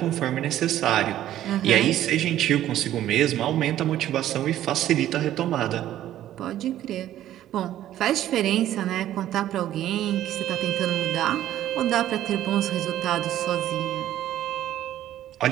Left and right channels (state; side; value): quieter; left; 12.6 dB